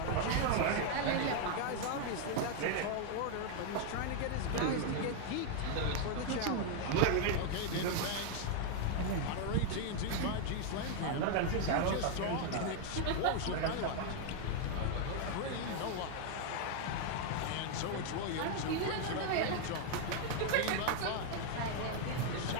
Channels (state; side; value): different; both; correlation 0.00